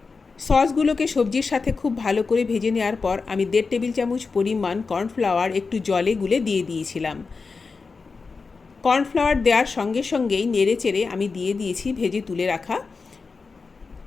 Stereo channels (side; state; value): right; quieter; 4.5 dB